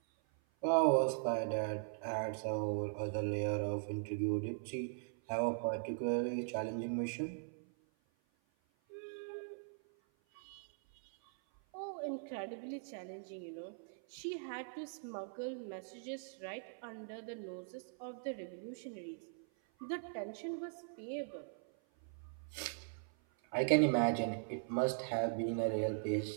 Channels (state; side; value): silent; left; 51 dB below the other